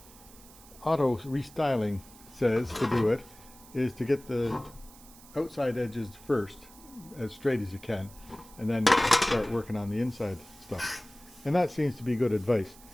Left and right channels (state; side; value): noise; right; hiss, 22 dB below the sound